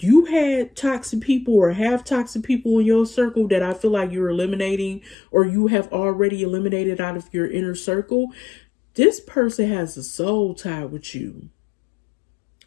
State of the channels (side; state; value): right; drops out; at 5.2 s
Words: toxic people or have toxic people in your circle that I feel like you're eliminating or you have already eliminated out of your inner circle, this person has a soul tie with you.